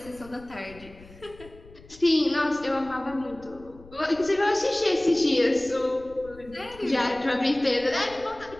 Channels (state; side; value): noise; left; rumble, 21 dB below the sound